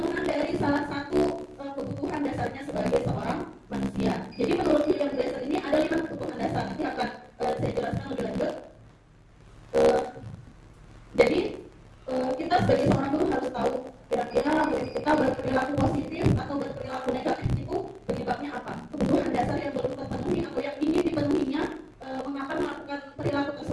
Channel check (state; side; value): identical; both; correlation 1.00